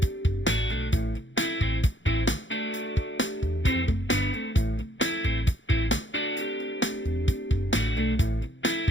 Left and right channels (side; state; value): right; late; 0.55 ms